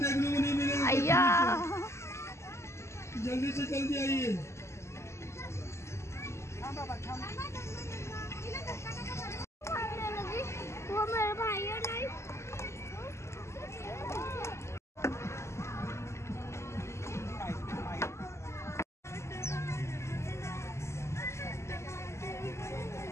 अय्या जल्दी से जल्दी आइए. वो मेरा भाई है नहीं.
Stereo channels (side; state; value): right; late; 0.13 ms